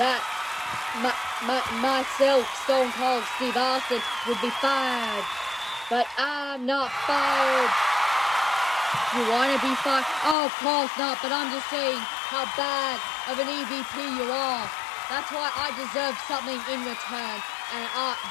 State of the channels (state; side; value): drops out; right; at 10.4 s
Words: myself, Stone Cold Steve Austin, would be fired. But I'm not fired. You want to be fired? Oh, of course not, but I'm just saying how bad of an EVP you are. That's why I deserve something in return. And